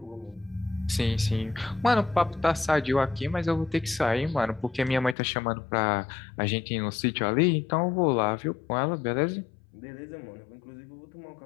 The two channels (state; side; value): drops out; right; at 5.2 s